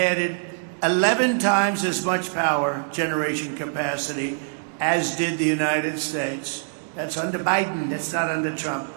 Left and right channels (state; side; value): silent; left; digital silence